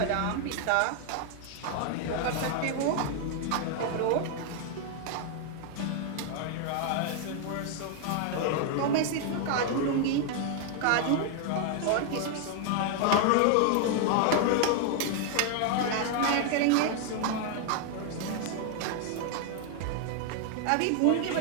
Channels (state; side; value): different; both; correlation 0.00